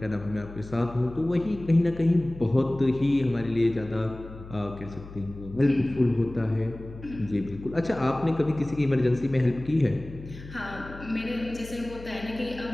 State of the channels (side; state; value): left; noise; hum, 15 dB below the sound